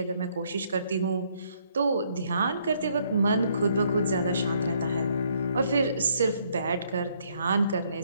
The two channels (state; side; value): inverted; both; correlation -0.69